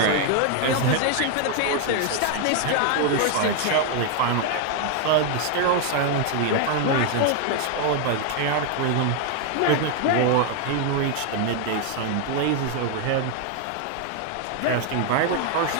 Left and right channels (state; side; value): different; both; correlation 0.00